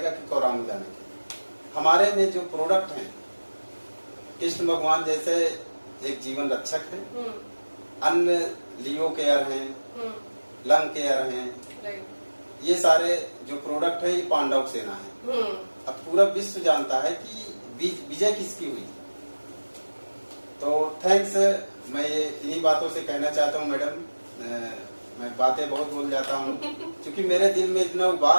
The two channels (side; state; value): both; inverted; correlation -1.00